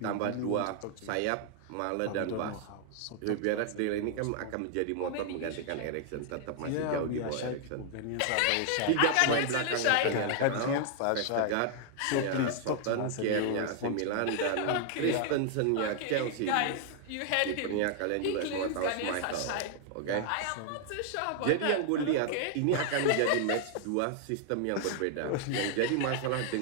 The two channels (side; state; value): both; different; correlation 0.00